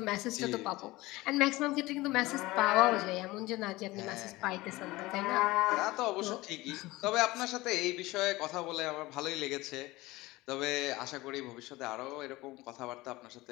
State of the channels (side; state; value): right; quieter; 19.9 dB